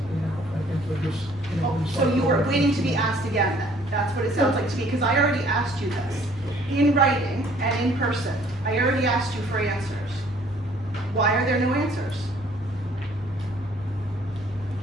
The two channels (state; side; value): normal; both; correlation 0.58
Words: out. I think they're just, you know. So you were waiting to be asked again then? That's what it sounds like to me, because I already asked you this, in writing and in person. I already asked you for answers. Why are there no answers?